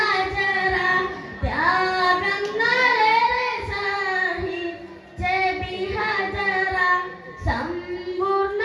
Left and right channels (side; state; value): both; identical; correlation 1.00